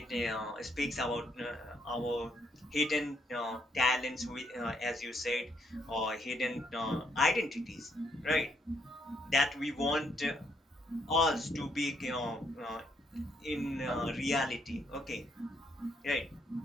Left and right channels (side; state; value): both; normal; correlation 0.73